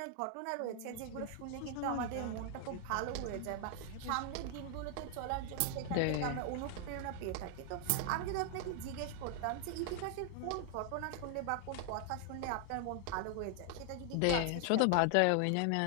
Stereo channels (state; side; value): different; both; correlation 0.00